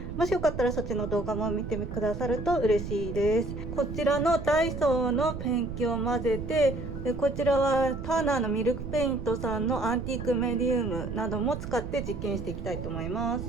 もしよかったらそっちの動画も見てくださると嬉しいです。こちらのダイソーのペンキを混ぜて、こちらはターナーのミルクペイントさんのアンティークメディウムなども使って実験していきたいと思います。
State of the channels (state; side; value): noise; right; rumble, 7 dB below the sound